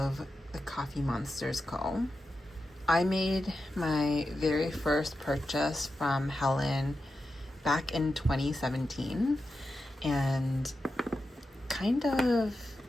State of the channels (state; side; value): normal; both; correlation 0.90